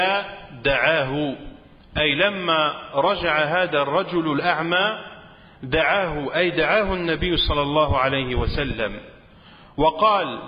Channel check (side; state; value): both; identical; correlation 1.00